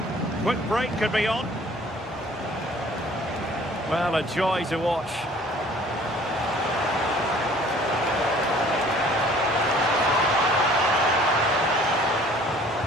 Quick break could be on. Well, a joy to watch.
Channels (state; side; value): normal; both; correlation 0.53